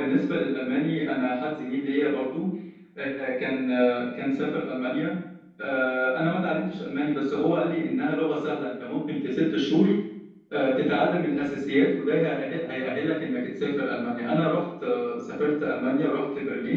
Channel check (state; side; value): identical; both; correlation 1.00